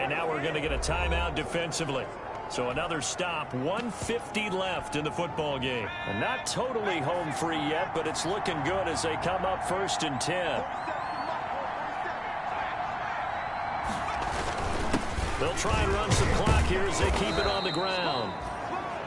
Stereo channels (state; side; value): identical; both; correlation 1.00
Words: now we're going to get a timeout defensively. So another stop, 1:50 left in the football game. And not totally home free yet, but it's looking good as they come up 1st and 10. They'll try and run some clock here as they keep it on the ground.